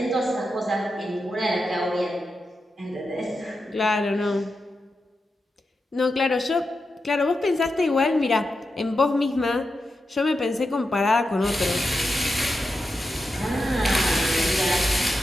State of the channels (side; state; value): both; normal; correlation 0.89